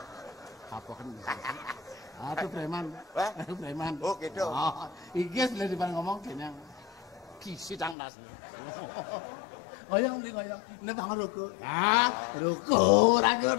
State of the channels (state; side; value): drops out; right; at 8.0 s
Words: Apa kan? Itu preman. Wah? Preman. Oh gitu. Iges boleh depan ngomong kayaknya. Kisi tangdas. Goyang di goyang. Ini bang ruku. Ruku. Ragu